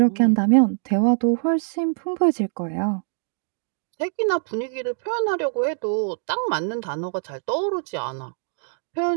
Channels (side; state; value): left; silent; digital silence